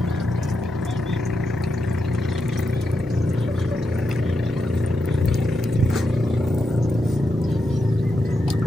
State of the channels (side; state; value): both; normal; correlation 0.85